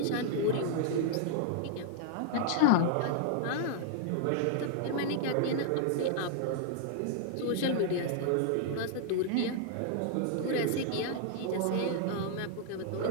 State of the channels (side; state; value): both; different; correlation -0.01